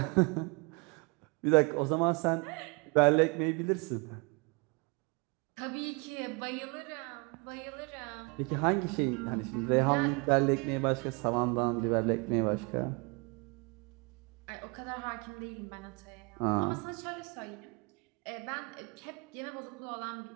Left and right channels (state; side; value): quieter; left; 31.4 dB